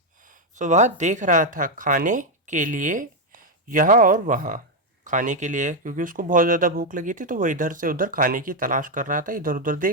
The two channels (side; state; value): both; normal; correlation 0.03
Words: So वह देख रहा था खाने के लिए यहाँ और वहाँ। खाने के लिए क्योंकि उसको बहुत ज़्यादा भूख लगी थी, तो वो इधर से उधर खाने की तलाश कर रहा था, इधर उधर